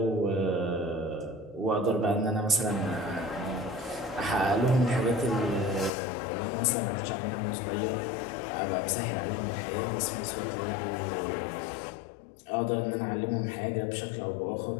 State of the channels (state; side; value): drops out; right; at 5.9 s